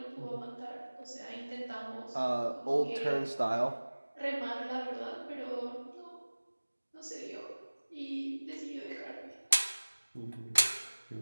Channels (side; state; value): both; inverted; correlation -1.00